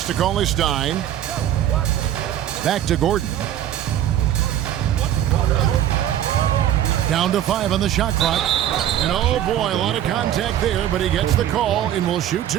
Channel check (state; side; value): quieter; left; 11.4 dB